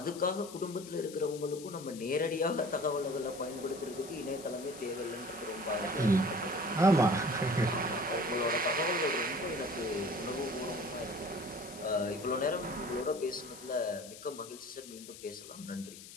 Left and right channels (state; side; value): noise; left; hiss, 15 dB below the sound